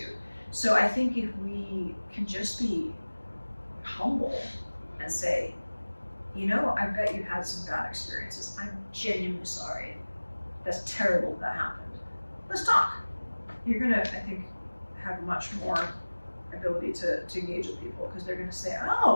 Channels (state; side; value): inverted; both; correlation -1.00